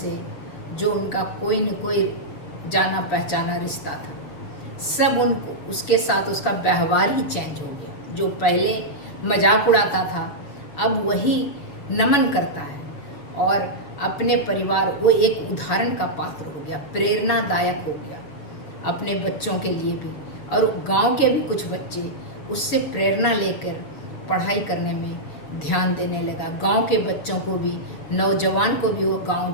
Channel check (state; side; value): late; right; 7.2 ms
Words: जो उनका कोई न कोई जाना पहचाना रिश्ता था, सब उनको, उसके साथ उसका व्यवहार ही चेंज हो गया। जो पहले मजाक उड़ाता था, अब वही नमन करता है, और अपने परिवार, वो एक उदाहरण का पात्र हो गया, प्रेरणादायक हो गया अपने बच्चों के लिए भी। और गांव के भी कुछ बच्चे उससे प्रेरणा लेकर पढ़ाई करने में ध्यान देने लगा। गांव के बच्चों को भी, नौजवान को भी वो गांव